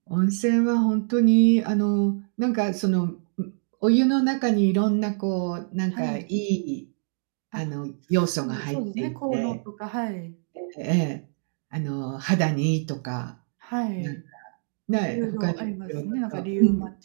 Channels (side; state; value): left; silent; digital silence